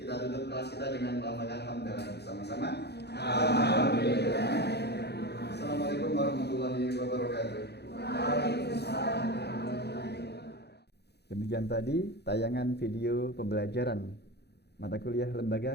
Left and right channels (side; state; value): right; late; 0.48 ms